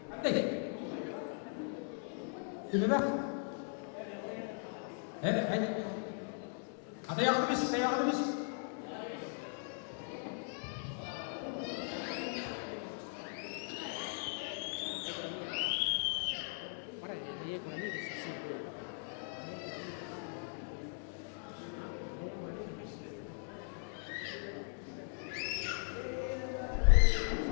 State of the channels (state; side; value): silent; right; 52 dB below the other